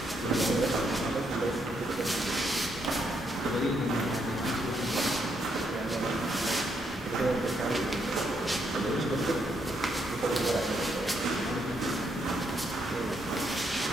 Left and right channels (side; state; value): both; normal; correlation 0.76